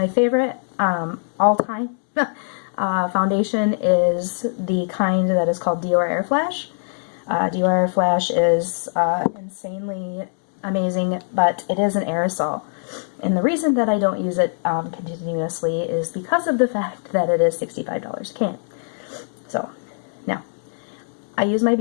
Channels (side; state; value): right; silent; digital silence